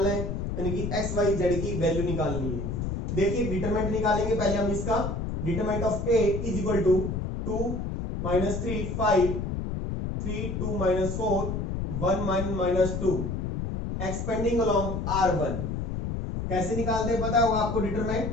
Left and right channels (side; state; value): left; noise; rumble, 3 dB below the sound